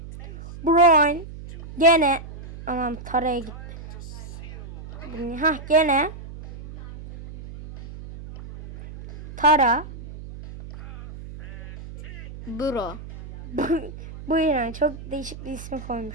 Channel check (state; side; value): noise; right; hum, 14 dB below the sound